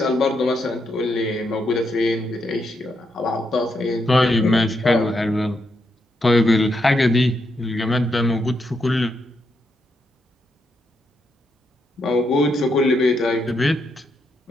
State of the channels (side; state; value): both; normal; correlation 0.80